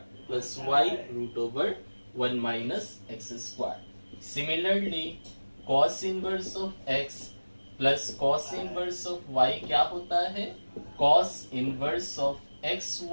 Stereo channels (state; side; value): inverted; both; correlation -1.00